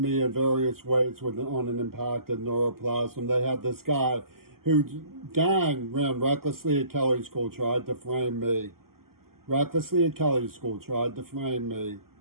in various ways on an impacted neuroplasm. They had this guy whose gang ran recklessly at Kelley School, tried to frame me. Recklessly at Kelley School, tried to frame me.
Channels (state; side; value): late; left; 0.92 ms